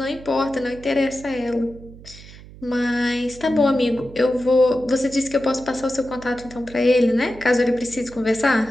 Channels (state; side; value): noise; right; hum, 18 dB below the sound